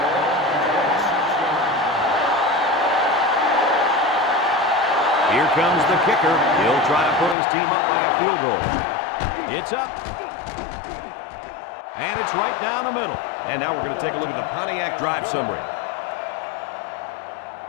Here comes the kicker. He'll try to put his team up by a field goal. It's up. And it's right down the middle. And now we're going to take a look at the Pontiac drive summary.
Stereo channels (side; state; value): right; drops out; at 7.4 s